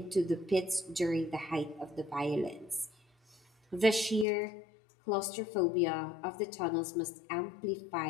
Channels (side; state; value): right; drops out; at 4.2 s